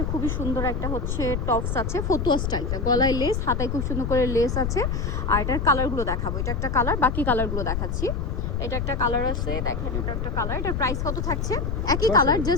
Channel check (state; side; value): noise; left; rumble, 1 dB below the sound